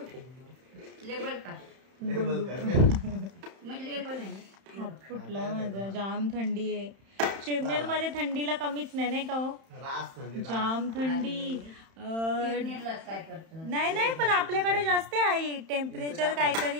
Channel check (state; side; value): late; left; 31 ms